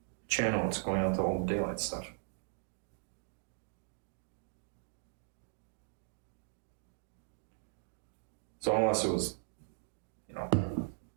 channel is going out to all the daylight stuff. So unless it was,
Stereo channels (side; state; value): left; silent; digital silence